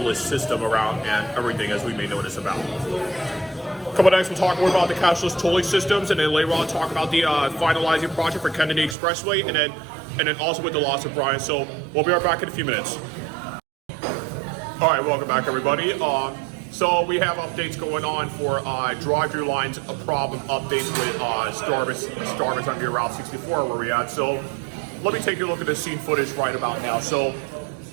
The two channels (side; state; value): left; drops out; at 9.0 s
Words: system around and everything, as we may notice about. Coming next, we'll talk more about the cashless tolling systems, and then later on talk about the finalizing project for Kennedy Expressway, and then also with the loss of Brian. So we'll be right back in a few minutes. All right, welcome back, everybody. So we have updates going on for drive-through lines, problem updates with Starbucks on your Route 64 where we're at. So let me take a look at the scene footage right about now. So